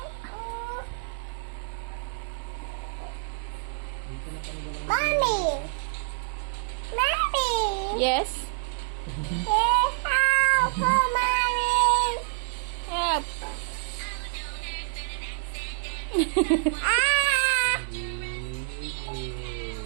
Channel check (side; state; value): left; silent; digital silence